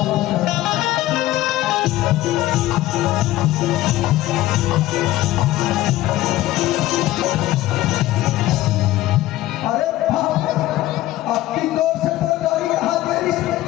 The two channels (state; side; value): quieter; right; 15.7 dB